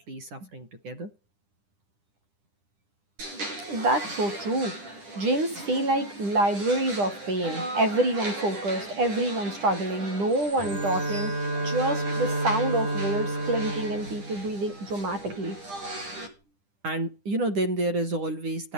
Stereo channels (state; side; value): late; left; 10 ms